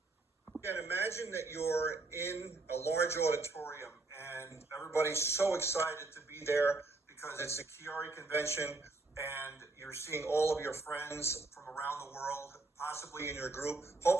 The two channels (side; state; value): left; quieter; 3.4 dB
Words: Again, imagine that you're in a large auditorium and everybody's so excited to be there because it's a QuiAri convention and you're seeing all of your friends from around the world, possibly in your group,